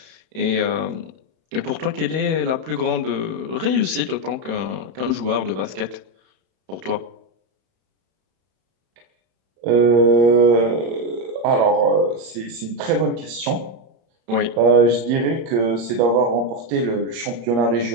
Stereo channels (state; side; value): late; left; 31 ms